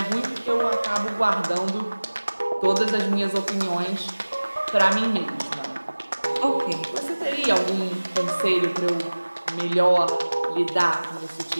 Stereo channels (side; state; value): both; inverted; correlation -1.00